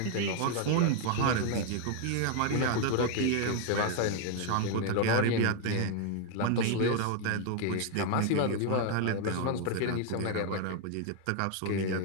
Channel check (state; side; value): different; both; correlation 0.00